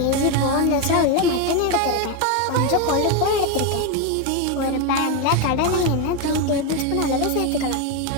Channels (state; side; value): different; both; correlation 0.03